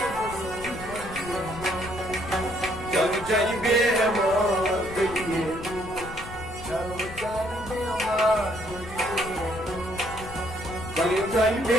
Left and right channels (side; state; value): left; noise; rumble, 13 dB below the sound